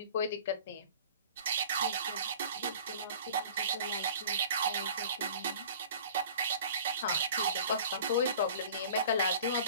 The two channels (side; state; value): both; inverted; correlation -0.45